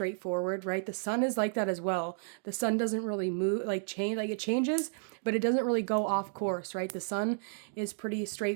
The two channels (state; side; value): silent; left; digital silence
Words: right? The sun is like that as well. The sun doesn't really move, change, like it changes, but it doesn't really go off course, right? The sun is pretty